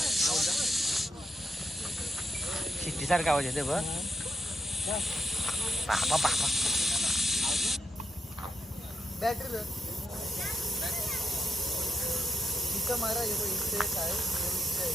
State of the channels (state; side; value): normal; both; correlation 0.82